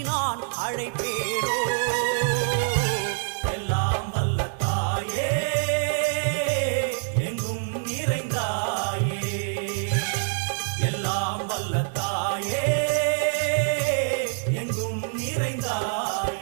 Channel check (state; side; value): silent; left; digital silence